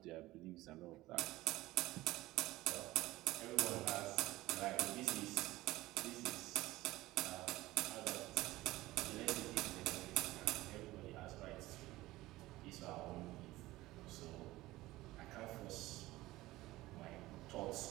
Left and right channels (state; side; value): quieter; left; 17.9 dB